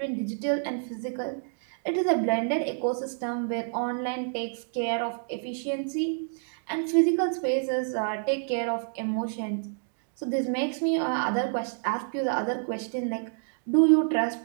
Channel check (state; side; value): silent; left; digital silence